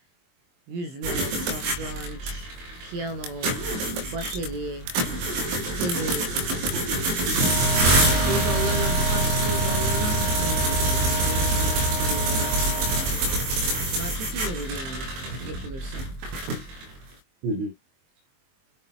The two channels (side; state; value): left; late; 23 ms